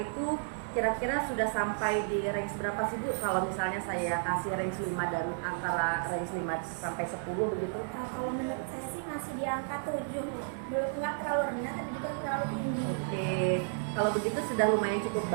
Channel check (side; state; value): left; silent; 56 dB below the other